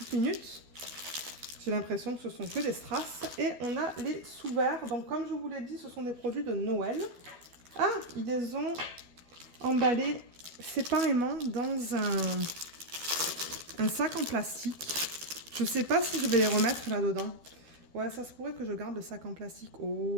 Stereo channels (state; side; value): late; left; 12 ms